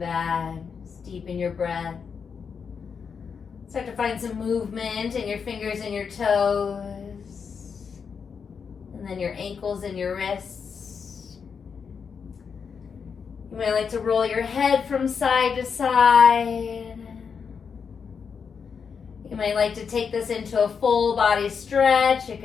Just deepen your breath. Start to find some movement in your fingers and your toes. And then your ankles and your wrists. You might like to roll your head from side to side. You might like to take this into a full body stretch. You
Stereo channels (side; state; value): right; quieter; 6.2 dB